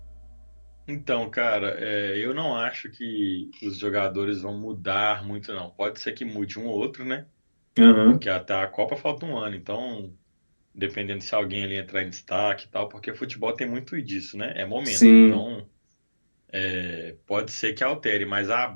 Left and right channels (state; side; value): inverted; both; correlation -1.00